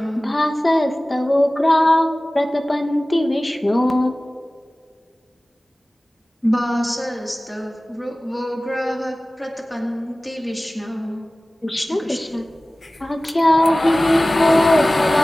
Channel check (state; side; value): normal; both; correlation 0.98